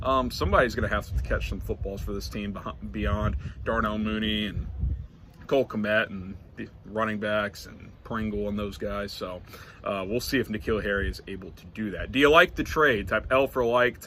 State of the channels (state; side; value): identical; both; correlation 1.00